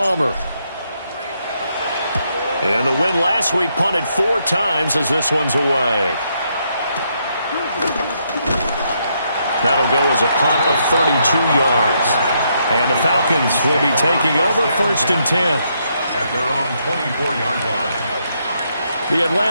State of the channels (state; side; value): inverted; both; correlation -0.76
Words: And the win last week punted 4 times as this one's away. That'll go as a punt of 32 yards. And the Falcons will be taking over 1st and 10. At their own 24-yard line. The